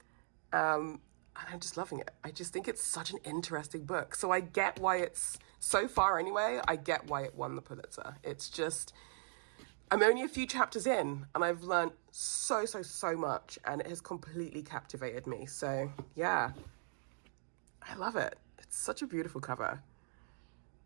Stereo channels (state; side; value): silent; left; digital silence